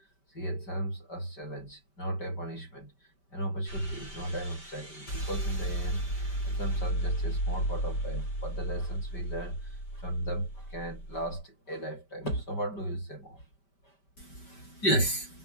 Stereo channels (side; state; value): right; late; 5.1 ms